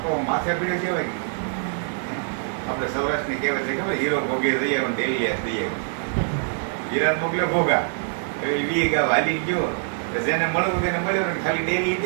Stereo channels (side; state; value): left; silent; digital silence